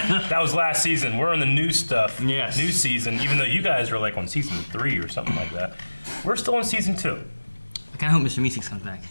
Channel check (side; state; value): both; inverted; correlation -1.00